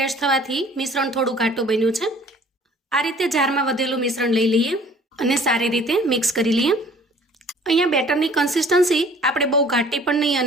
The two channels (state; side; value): normal; both; correlation 0.52